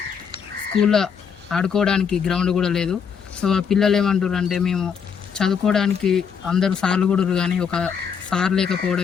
స్కూల్లో ఆడుకోవడానికి గ్రౌండ్ కూడా లేదు. సో ఆ పిల్లలు ఏమంటారు అంటే మేము చదువుకోవడానికి అందరూ సార్లు కూడా కానీ ఒక సార్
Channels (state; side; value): quieter; right; 6.8 dB